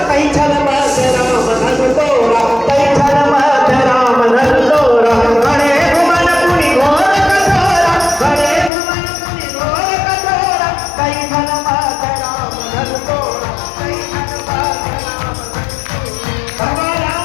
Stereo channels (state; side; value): drops out; right; at 8.7 s